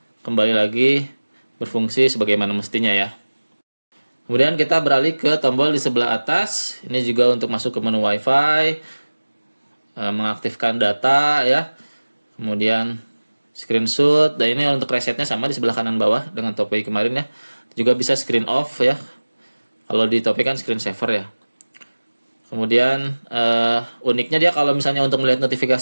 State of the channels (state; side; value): inverted; both; correlation -1.00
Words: kembali lagi berfungsi sebagaimana mestinya ya. Kemudian kita beralih ke tombol di sebelah atas. Ini juga untuk masuk ke menu WiFi, mengaktifkan data ya. Kemudian screenshot, dan ini untuk resetnya sama di sebelah kanan bawah dengan Topway kemarin ya. Juga bisa screen off ya. Kalau di Topway kan screen saver ya. Kemudian uniknya dia kalau misalnya untuk melihat